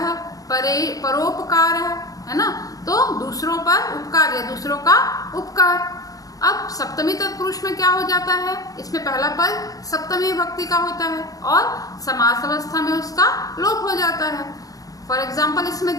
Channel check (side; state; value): right; late; 0.17 ms